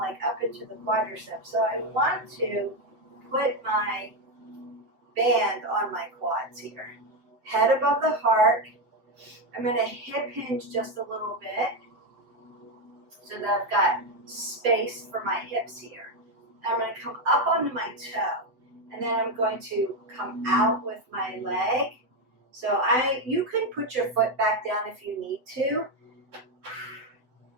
up into the quadriceps. So I want to put my band on my quads here. Head above the heart. I'm going to hip hinge just a little bit so that I've got space for my hips here. I'm going to come up onto my toe, and then I'm going to come out with my leg. So you can put your foot back down if you need to.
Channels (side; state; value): left; late; 7.9 ms